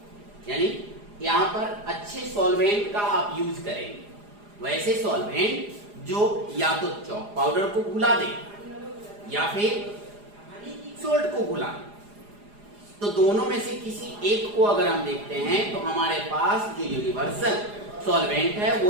यानी यहां पर अच्छे सॉल्वेंट का आप यूज करेंगे। वैसे सॉल्वेंट जो या तो चॉक पाउडर को घुला दे या फिर सोल्ट को घुला दे। तो दोनों में से किसी एक को अगर हम देखते हैं तो हमारे पास जो यूनिवर्सल सॉल्वेंट है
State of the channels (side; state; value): left; late; 4.9 ms